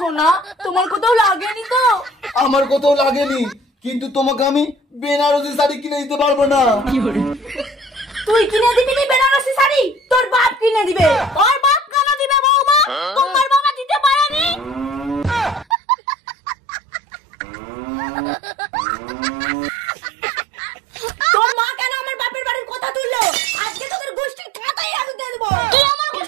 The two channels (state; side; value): drops out; left; at 15.8 s